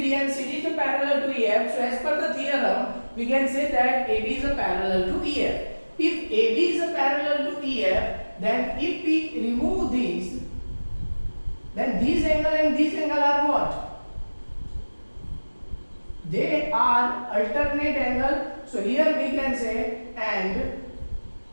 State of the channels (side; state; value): both; inverted; correlation -1.00